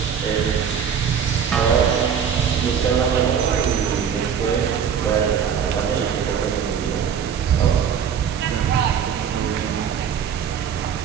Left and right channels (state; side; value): quieter; left; 7.7 dB